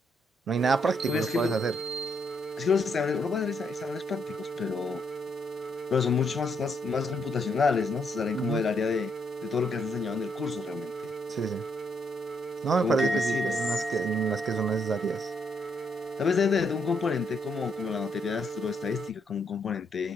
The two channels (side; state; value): both; normal; correlation 0.75